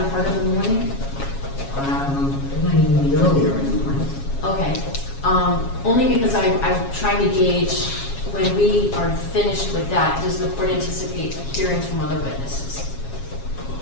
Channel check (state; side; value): late; right; 7.3 ms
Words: part of the morning. It might even be earlier in the morning. Okay. Only because I'm trying to gauge when we are finished with that, does the court anticipate hearing from other witnesses?